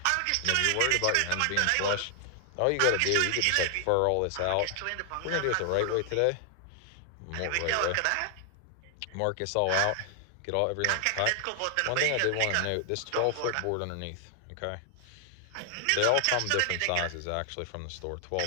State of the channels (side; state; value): both; different; correlation 0.00